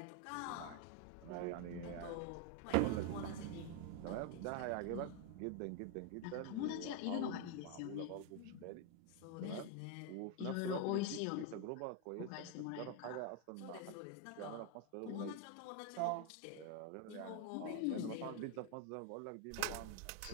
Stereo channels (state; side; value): different; both; correlation 0.01